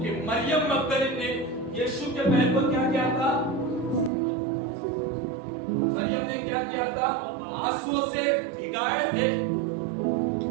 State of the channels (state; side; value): drops out; left; at 4.1 s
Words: मरियम मगदलीन ने यीशु के पैर को क्या किया था? मरियम ने क्या किया था? आंसुओं से भिगाए थे।